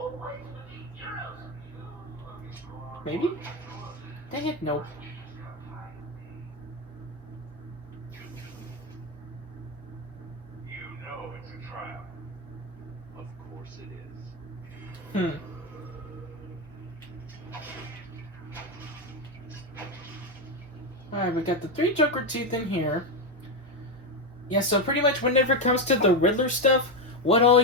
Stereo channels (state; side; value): normal; both; correlation 0.09